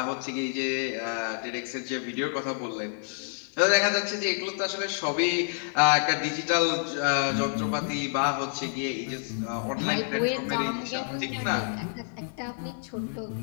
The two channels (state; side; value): silent; right; 59 dB below the other